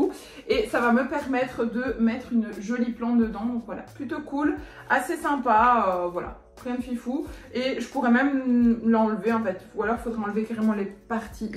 Et ça va me permettre de mettre une jolie plante dedans. Donc voilà, plutôt cool, assez sympa, voilà. Rien de fifou. Et je pourrais même l'enlever en fait. Ou alors il faudrait enlever carrément les parties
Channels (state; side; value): identical; both; correlation 1.00